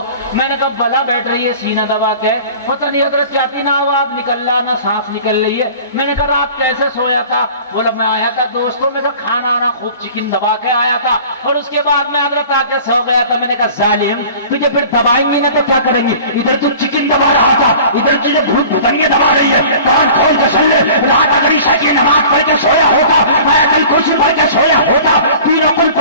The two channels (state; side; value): inverted; both; correlation -0.44